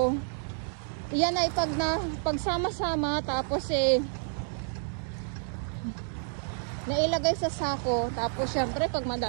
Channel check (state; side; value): silent; left; 58 dB below the other